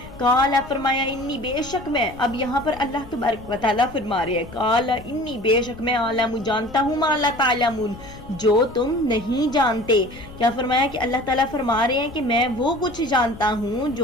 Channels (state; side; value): noise; left; rumble, 17 dB below the sound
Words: قالا فرمایا، انی بے شک میں، اب یہاں پر اللہ تبارک و تعالیٰ فرما رہے ہیں، قالا انی بے شک میں، عالم جانتا ہوں، ما لا تعلمون جو تم نہیں جانتے۔ کیا فرمایا کہ اللہ تعالیٰ فرما رہے ہیں کہ میں وہ کچھ جانتا ہوں